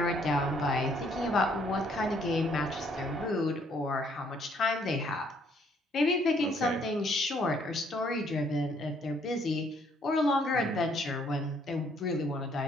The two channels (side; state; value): both; normal; correlation 0.66